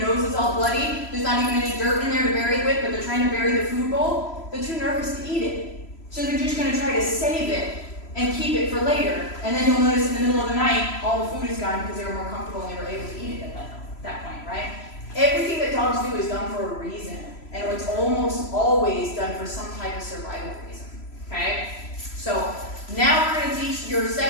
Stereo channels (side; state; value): right; late; 3.0 ms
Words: nose is all bloody. There's not even any dirt in there to bury it with, but they're trying to bury the food bowl. They're too nervous to eat it. So they're just going to try to save it and keep it for later. And then you'll notice in the middle of the night, all the food is gone because they were more comfortable and they were able to eat it at that point, right? Everything that dogs do is done for a reason. And it's almost always done for some type of survival reason, okay? So now we're going to teach your